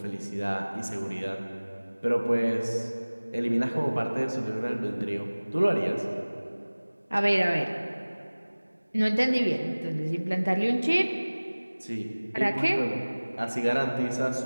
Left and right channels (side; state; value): both; inverted; correlation -1.00